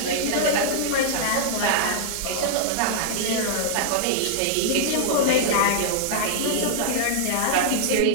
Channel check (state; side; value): different; both; correlation -0.01